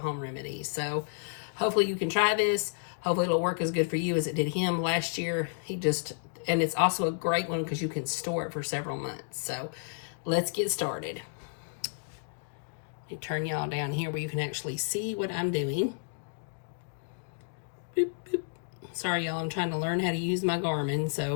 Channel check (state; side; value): silent; right; digital silence